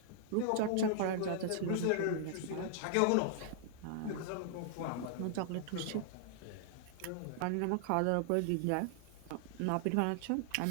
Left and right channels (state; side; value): different; both; correlation -0.01